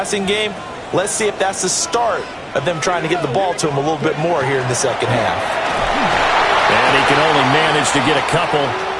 game. Let's see if that's the start of them trying to get the ball to him a little bit more here in the second half. And he can only manage to get a couple.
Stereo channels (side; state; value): both; identical; correlation 1.00